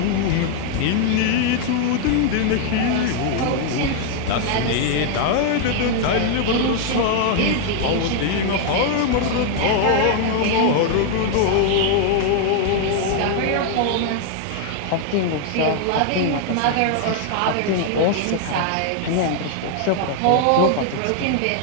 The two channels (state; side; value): different; both; correlation 0.00